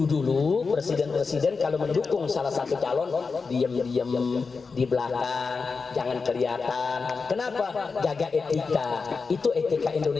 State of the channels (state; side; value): quieter; right; 4.7 dB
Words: presiden-presiden kalau mendukung salah satu calon, diam-diam di belakang, jangan kelihatan. Kenapa? Jaga etika. Itu etika